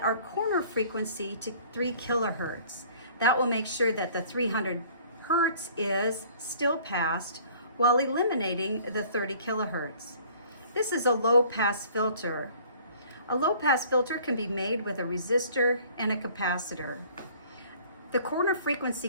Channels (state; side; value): inverted; both; correlation -0.53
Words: our corner frequency to 3 kilohertz. That will make sure that the 300 hertz is still passed while eliminating the 30 kilohertz. This is a low pass filter. A low pass filter can be made with a resistor and a capacitor. The corner frequency